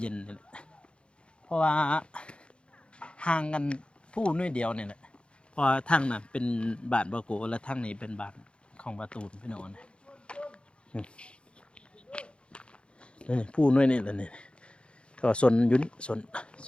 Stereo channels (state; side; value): late; right; 0.057 ms